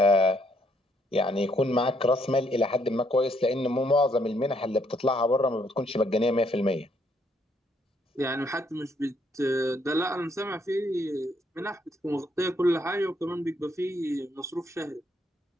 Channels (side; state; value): both; normal; correlation 0.71